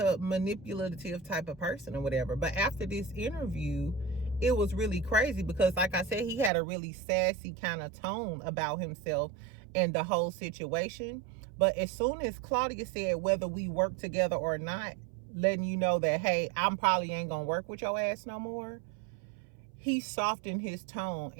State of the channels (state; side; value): drops out; left; at 6.5 s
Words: manipulative type of person or whatever. But after this interview, it was really crazy because, like I said, he had a really sassy kind of tone about himself and the whole situation. But as soon as Claudia said whether we work together or not, letting you know that, hey, I'm probably ain't gonna work with your ass no more, he softened his tone